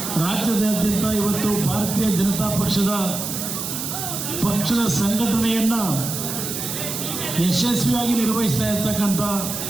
ರಾಜ್ಯದಾದ್ಯಂತ ಇವತ್ತು ಭಾರತೀಯ ಜನತಾ ಪಕ್ಷದ ಸಂಘಟನೆಯನ್ನು ಯಶಸ್ವಿಯಾಗಿ ನಿರ್ವಹಿಸ್ತಾ ಇರ್ತಕ್ಕಂಥ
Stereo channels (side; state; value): right; noise; hiss, 5 dB below the sound